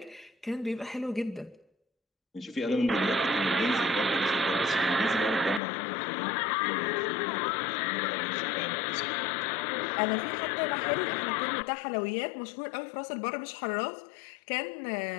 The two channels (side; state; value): right; drops out; at 5.6 s